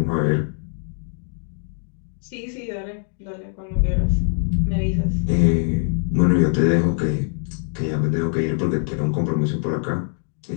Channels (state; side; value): silent; right; 61 dB below the other